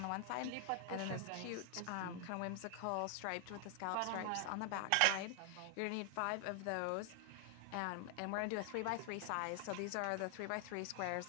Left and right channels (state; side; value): different; both; correlation 0.00